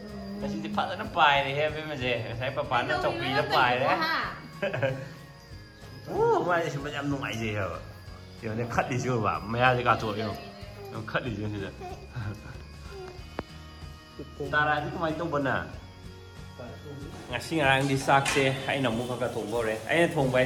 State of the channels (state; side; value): identical; both; correlation 1.00